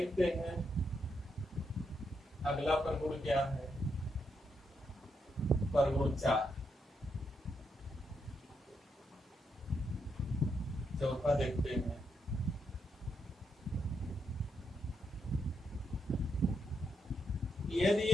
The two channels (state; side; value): normal; both; correlation 0.80